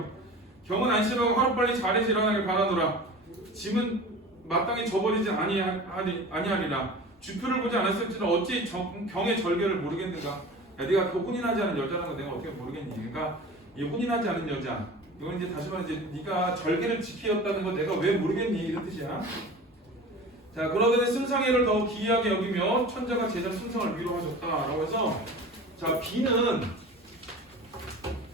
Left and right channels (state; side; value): normal; both; correlation 0.37